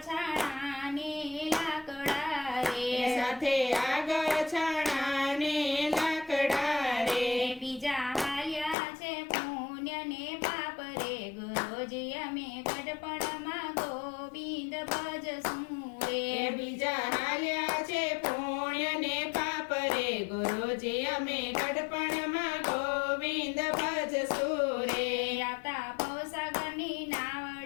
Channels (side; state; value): right; drops out; at 8.8 s